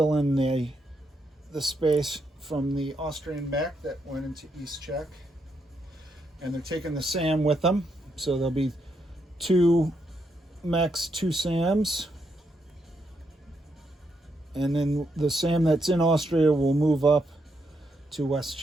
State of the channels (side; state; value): both; normal; correlation 0.79